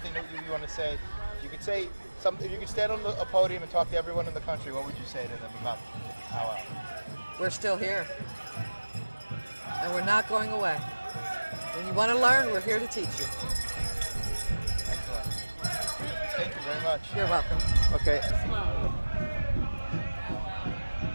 that you want to say? You could say something. If you could stand on a podium and talk to everyone in the country, what would you say to them about powwow? We're still here, and we're not going away. When you want to learn, we're here to teach you. Excellent. Thank you very much. You're welcome. Okay.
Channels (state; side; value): inverted; both; correlation -1.00